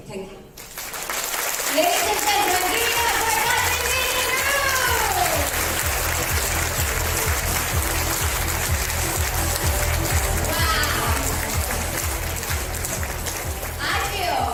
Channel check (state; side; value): identical; both; correlation 1.00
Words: thank you. Ladies and gentlemen, give it up for Dr. Wow.